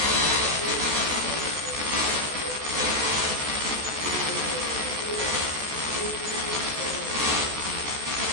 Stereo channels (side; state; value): left; late; 14 ms